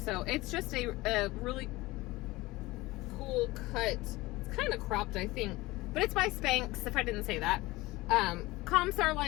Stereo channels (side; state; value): right; quieter; 20.4 dB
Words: it's just a really cool cut. It's kind of cropped, I think, but it's by Spanx, if I didn't say that. Comps are